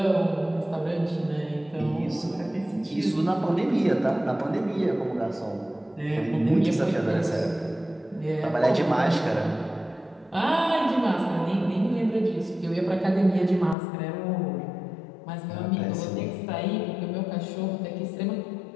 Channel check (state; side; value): drops out; right; at 13.8 s